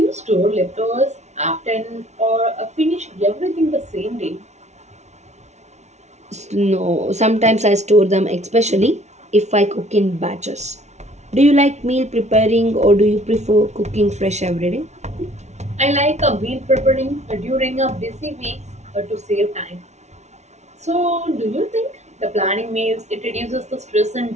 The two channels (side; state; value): left; late; 0.32 ms